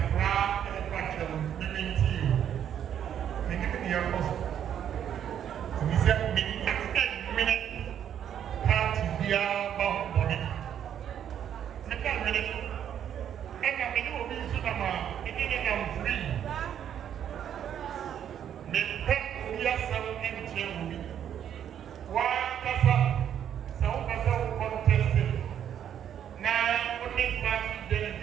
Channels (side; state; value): left; quieter; 9.5 dB